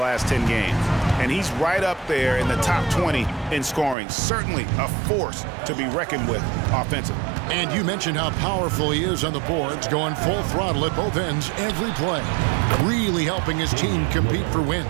10 games. And he's right up there in the top 20 in scoring. Certainly a force to be reckoned with offensively. And you mentioned how powerful he is on the boards, going full throttle at both ends every play. Really helping his team compete for wins.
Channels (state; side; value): drops out; left; at 4.0 s